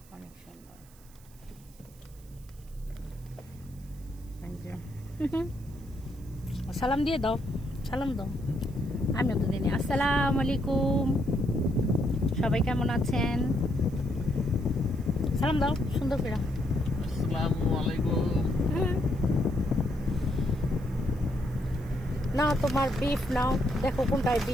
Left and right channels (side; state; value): right; noise; hiss, 26 dB below the sound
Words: অনেক সুন্দর। সালাম দিয়ে দাও, সালাম দাও। আমিও তো দিনে আসসালামু আলাইকুম, সবাই কেমন আছেন? সালাম দাও সুন্দর করে। আসসালামু আলাইকুম। না তোমার বিফ নাও, দেখো কোনটায়